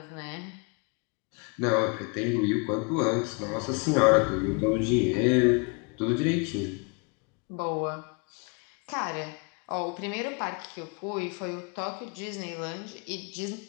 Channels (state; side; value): quieter; right; 33.3 dB